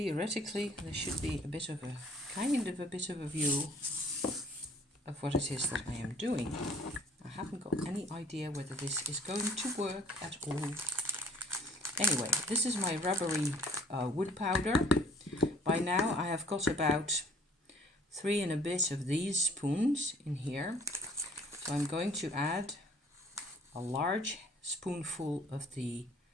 there should be a bit of a view of what it is that I am doing. I haven't got any idea whether this is going to work at all. Anyway, this is my rubbery wood powder. By now I have got about 3 and a bit of these spoons in here. So I'm going to add a large spoonful of the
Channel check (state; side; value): normal; both; correlation 0.55